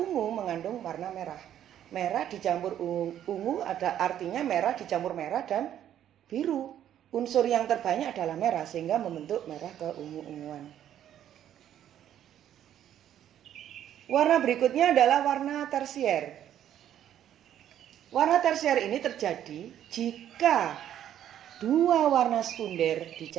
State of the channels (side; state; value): left; quieter; 10.8 dB